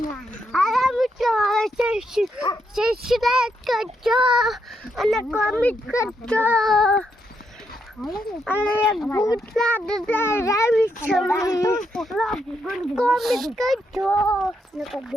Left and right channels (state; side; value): normal; both; correlation 0.79